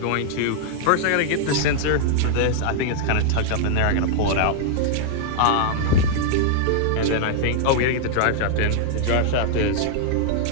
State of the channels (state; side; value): different; both; correlation -0.01